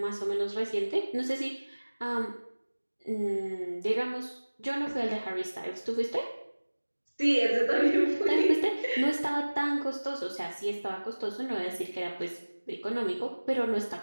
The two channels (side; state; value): both; inverted; correlation -1.00